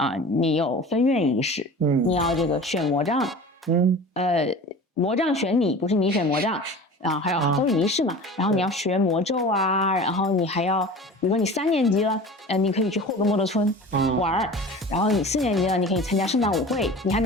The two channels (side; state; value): both; normal; correlation 0.38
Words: 你有分院仪式，你要这个选魔杖，魔杖选你，不是你选魔杖。还有都是仪式嘛，然后你要学魔咒然后你还要，比如说你3年级了，你可以去霍格莫德村玩然后你4年级了，你可以参加圣诞舞会，你还